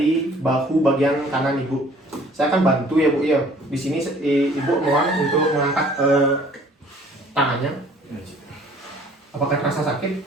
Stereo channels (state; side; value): normal; both; correlation 0.55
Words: bahu bagian kanan Ibu. Saya akan bantu ya, Bu ya. Di sini Ibu mohon untuk mengangkat tangannya. Apakah terasa sakit?